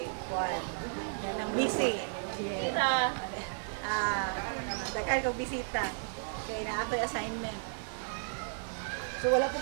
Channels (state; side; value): silent; left; digital silence